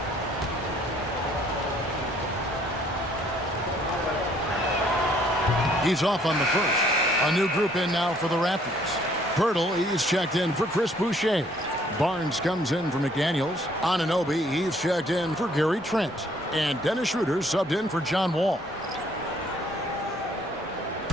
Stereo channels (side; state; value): both; normal; correlation 0.62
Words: He's off on the first. A new group in now for the Raptors. Pirtle, he's checked in for Chris Boucher. Barnes comes in for McDaniels. Anunoby, he's checked in for Gary Trent. And Dennis Schroeder subbed in for John Wall.